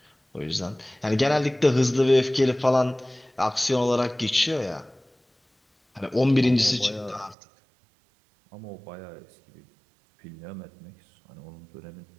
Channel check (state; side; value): drops out; left; at 7.4 s